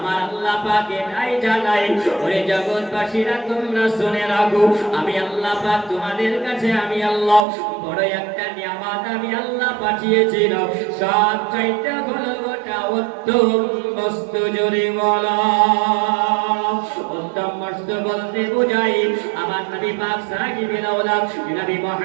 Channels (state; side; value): drops out; left; at 7.4 s